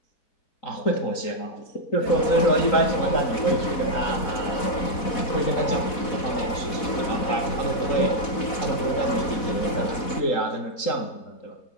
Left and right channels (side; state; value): right; late; 4.1 ms